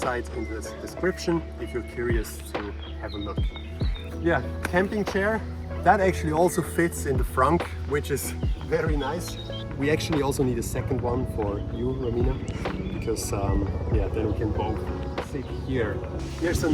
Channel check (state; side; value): identical; both; correlation 1.00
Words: in the description if you're curious to have a look. Yeah, camping chair. That actually also fits in the frunk, which is very nice. We actually also need a second one for you, Romina, because yeah, then we can both sit here. Here's